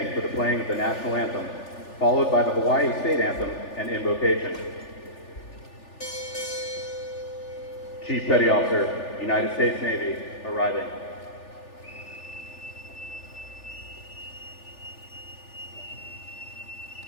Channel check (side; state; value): right; late; 3.4 ms